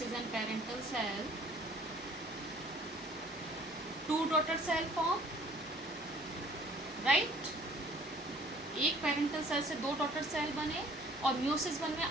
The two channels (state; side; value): normal; both; correlation 0.55